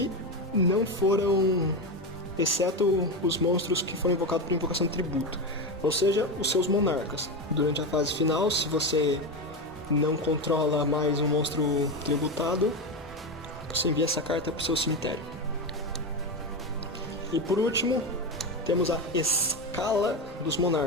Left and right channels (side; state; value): both; normal; correlation 0.16